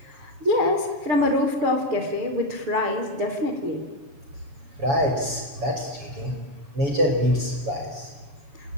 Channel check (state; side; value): late; left; 7.1 ms